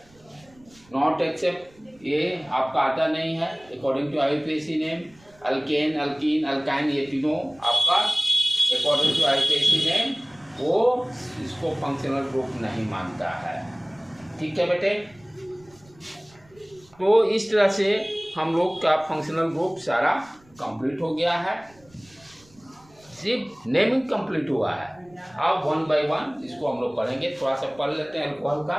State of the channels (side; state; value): right; noise; rumble, 28 dB below the sound